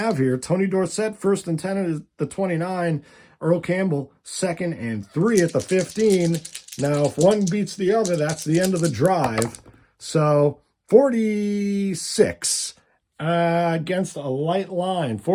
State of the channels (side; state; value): both; identical; correlation 1.00